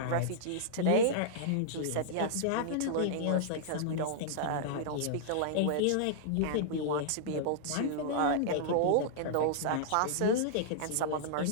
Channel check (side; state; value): both; different; correlation -0.02